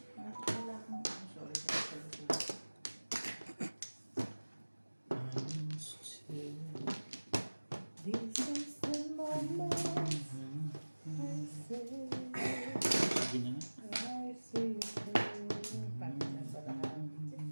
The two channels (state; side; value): inverted; both; correlation -1.00